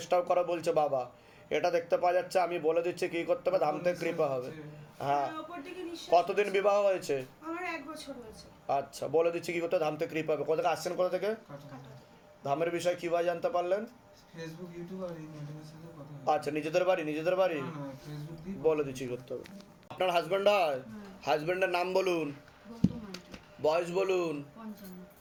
করে বলছে বাবা। এটা দেখতে পাওয়া যাচ্ছে। আমি বলে দিচ্ছি কি করতে হবে, ধামতে কৃপা হবে। হ্যাঁ। ওপর দিকে নিঃশ্বাস কতদিন হচ্ছে। বিবাহ হয়েছে? আমার 1 বছর হয়েছে। আচ্ছা, বলে দিচ্ছি কি করতে হবে, ধামতে কৃপা হবে। কোথা থেকে আসছেন, কোথা থেকে? ধামের বিষয় কীভাবে জানতে পারলেন? ফেসবুক, ইউটিউব আর এই ম্যাডামের সাথে কথা হয়। আচ্ছা, নিজেদের বাড়ি? নিজেদের বাড়ি? না, না, ফেসবুক দিয়ে বলে দিচ্ছি কি করতে হবে। আপনার হাজব্যান্ড হয়? হাজব্যান্ডের নাম বলুন, বয়স বলুন।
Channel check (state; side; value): identical; both; correlation 1.00